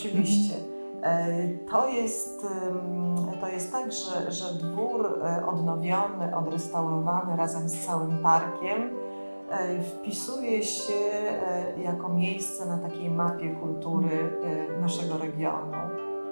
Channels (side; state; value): both; inverted; correlation -1.00